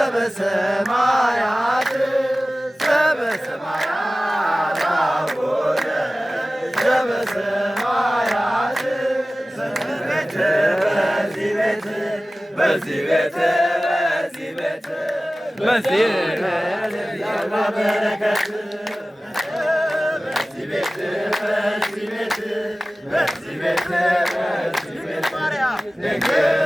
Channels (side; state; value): both; normal; correlation 0.97